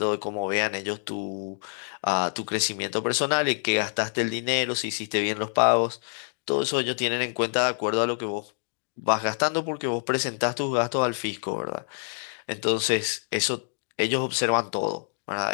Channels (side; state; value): right; silent; digital silence